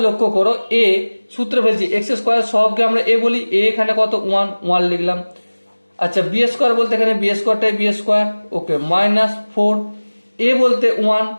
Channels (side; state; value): both; inverted; correlation -1.00